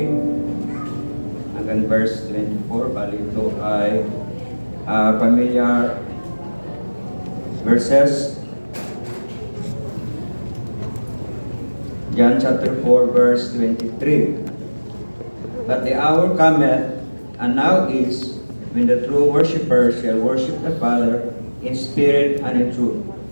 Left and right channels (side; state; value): both; inverted; correlation -1.00